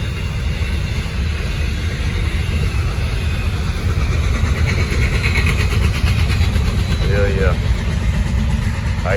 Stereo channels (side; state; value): both; identical; correlation 1.00